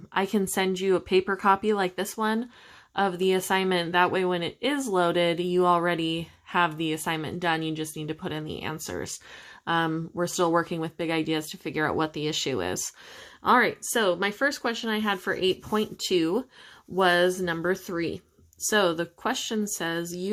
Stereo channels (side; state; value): both; identical; correlation 1.00